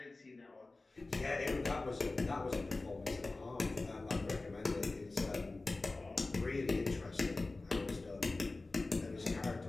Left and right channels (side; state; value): right; quieter; 3.3 dB